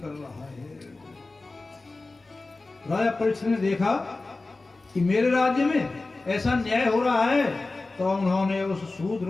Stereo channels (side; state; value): right; quieter; 3.4 dB